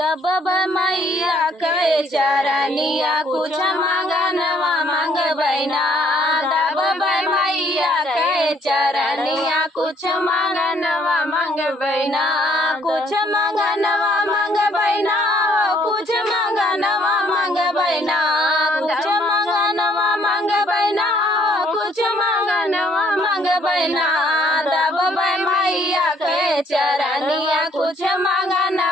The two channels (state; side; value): normal; both; correlation 0.64